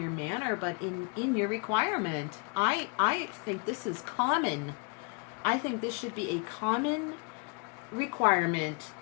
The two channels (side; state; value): right; quieter; 33.3 dB